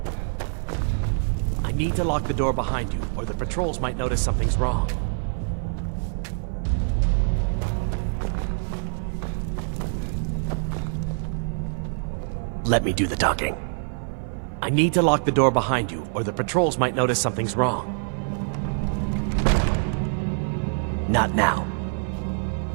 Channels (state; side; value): silent; left; 55 dB below the other